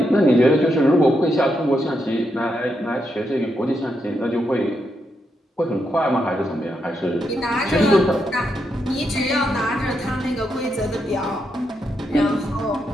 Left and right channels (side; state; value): both; normal; correlation 0.82